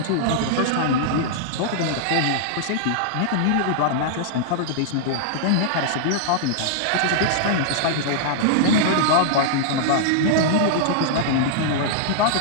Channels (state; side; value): different; both; correlation -0.01